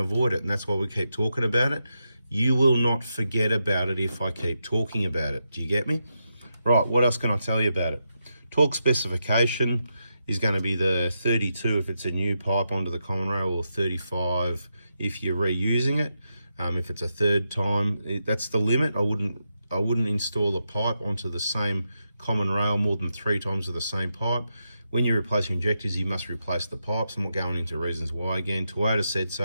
it, and that's why we keep talking about it. You will not forget about it if I keep talking about it. Do you get me? Right, what else can I tell you about it? Torque specification is going to be the 32 if it's a new pipe onto the common rail, or 35 if you're reusing it. If it's a third time, that's the limit. I wouldn't install a pipe onto the same common rail more than 3 times with the same pipe. When you replace your injectors, you must replace the pipes. I'm not going into reasons why again. Toyota said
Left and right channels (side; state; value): both; inverted; correlation -0.85